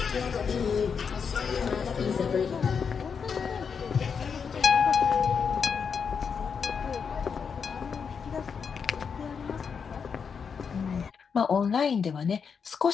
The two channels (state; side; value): quieter; right; 6.2 dB